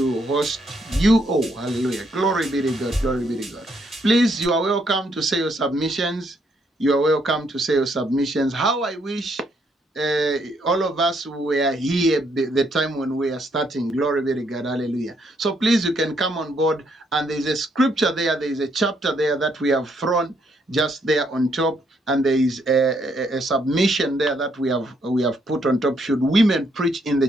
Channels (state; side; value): normal; both; correlation 0.73